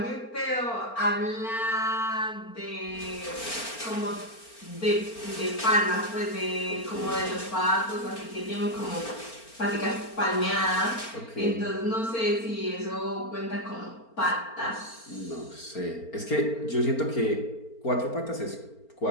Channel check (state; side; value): late; right; 4.4 ms